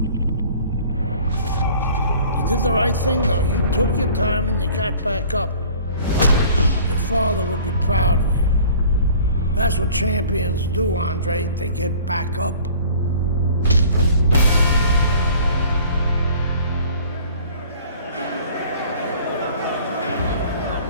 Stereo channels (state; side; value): inverted; both; correlation -0.49